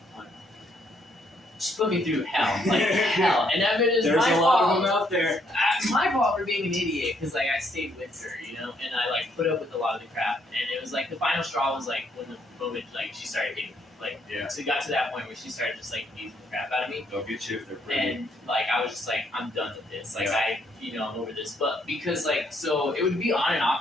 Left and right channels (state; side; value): normal; both; correlation 0.70